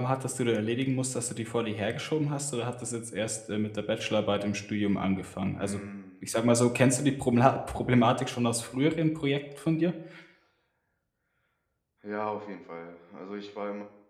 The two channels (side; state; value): both; identical; correlation 1.00